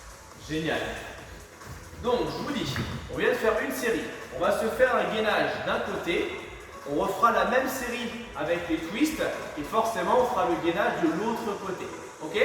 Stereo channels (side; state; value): both; identical; correlation 1.00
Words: Génial. Donc, je vous dis, on vient de faire une série. On va se faire un gainage d'un côté. On refera la même série avec les twists. Et forcément, on fera le gainage de l'autre côté. Ok?